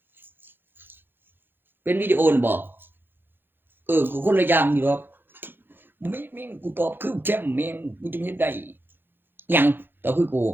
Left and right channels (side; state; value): left; late; 0.10 ms